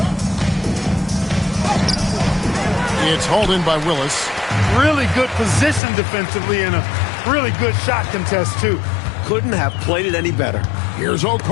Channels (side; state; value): right; drops out; at 5.8 s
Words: It's hauled in by Willis. Really good position defensively and a really good shot contest, too. Couldn't have played it any better. Here's